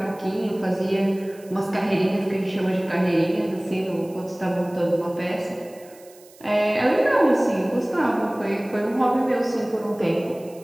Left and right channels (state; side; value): noise; right; hiss, 25 dB below the sound